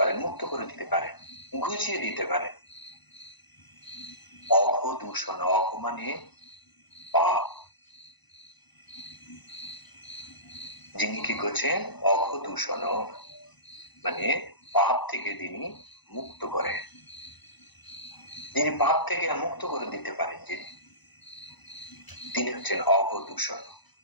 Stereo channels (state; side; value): late; right; 1.0 ms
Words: মুক্ত করে দিতে পারেন, ঘুচিয়ে দিতে পারেন। অঘদূষণ, অঘ মানে পাপ, যিনি কি করছেন? অঘদূষণ মানে পাপ থেকে তিনি মুক্ত করেন, যিনি পাপ থেকে মুক্ত করে দিতে পারেন, তিনি হচ্ছেন অঘদূষণ।